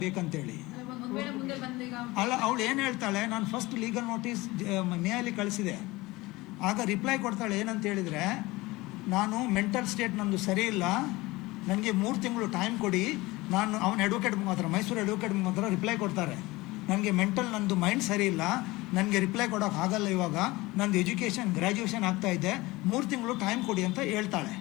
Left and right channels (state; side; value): quieter; right; 20.9 dB